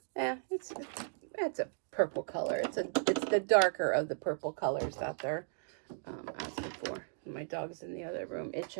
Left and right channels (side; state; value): left; silent; digital silence